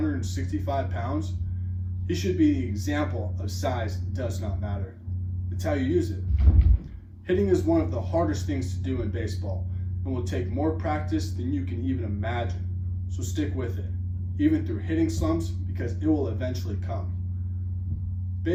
pounds, he should be the example of size does not matter. It's how you use it. Hitting is one of the hardest things to do in baseball and will take more practice than you can even imagine. So stick with it, even through hitting slumps, because it will eventually come.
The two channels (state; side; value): identical; both; correlation 1.00